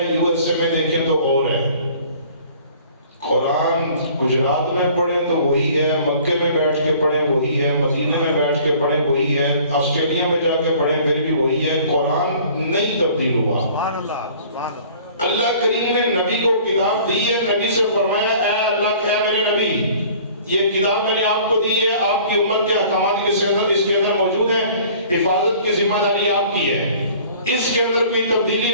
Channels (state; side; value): inverted; both; correlation -0.51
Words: یو ایس اے میں دیکھیں تو اور ہے۔ قرآن گجرات میں پڑھیں تو وہی ہے، مکے میں بیٹھ کے پڑھیں وہی ہے، مدینہ میں بیٹھ کے پڑھیں وہی ہے، آسٹریلیا میں جا کے پڑھیں پھر بھی وہی ہے، قرآن نہیں تبدیل ہوا۔ سبحان اللہ، سبحان اللہ۔ اللہ کریم نے نبی کو کتاب دی ہے، نبی سے فرمایا اے اللہ، اے میرے نبی، یہ کتاب میں نے آپ کو دی ہے، آپ کی امت کے احکامات اس کے اندر موجود ہے، حفاظت کی ذمہ داری آپ کی ہے، اس کے اندر کوئی تبدیلی